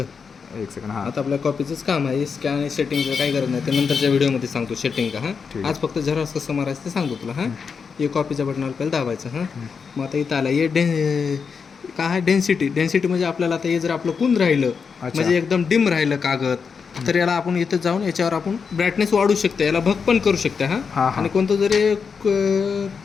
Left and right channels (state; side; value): quieter; right; 5.8 dB